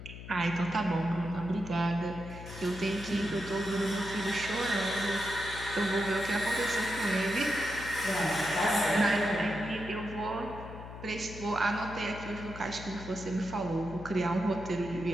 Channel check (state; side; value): noise; left; hum, 12 dB below the sound